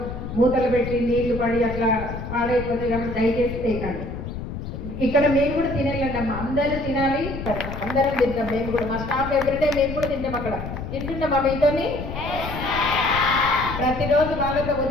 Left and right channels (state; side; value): noise; left; rumble, 7 dB below the sound